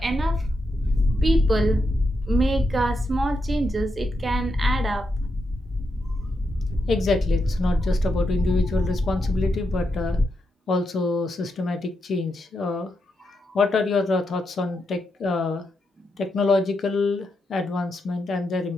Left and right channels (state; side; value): normal; both; correlation 0.84